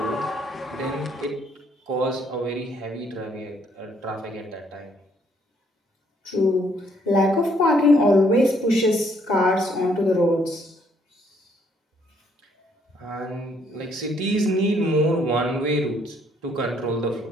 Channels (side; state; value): both; normal; correlation 0.67